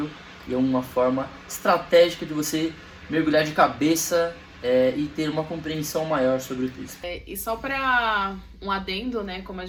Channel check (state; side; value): identical; both; correlation 1.00